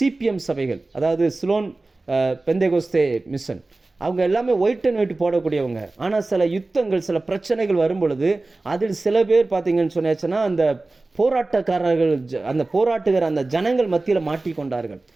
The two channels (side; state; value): left; quieter; 3.2 dB